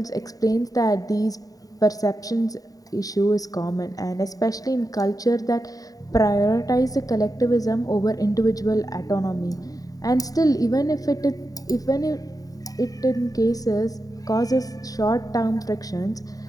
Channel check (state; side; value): late; right; 0.18 ms